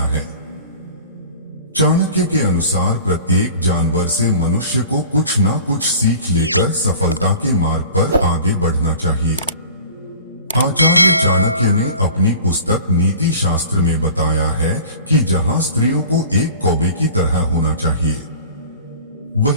है। चाणक्य के अनुसार प्रत्येक जानवर से मनुष्य को कुछ ना कुछ सीख लेकर सफलता के मार्ग पर आगे बढ़ना चाहिए। आचार्य चाणक्य ने अपनी पुस्तक नीति शास्त्र में बताया है कि जहां स्त्रियों को एक कौवे की तरह होना चाहिए,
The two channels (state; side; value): inverted; both; correlation -0.42